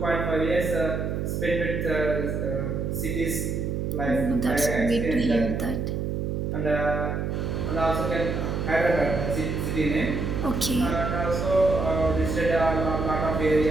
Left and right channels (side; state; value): right; noise; hum, 1 dB below the sound